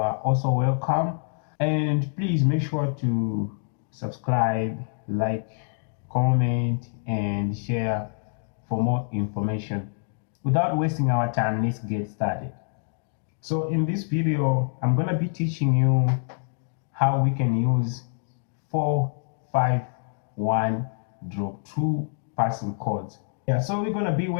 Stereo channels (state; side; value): silent; right; digital silence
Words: also welcome, and please make sure to subscribe, like, comment and share for more information. Without wasting our time, let's get started. So in this video, I'm going to be teaching you how we can use 4-5-1 drop 2 passing chords. Yeah, so we're going to be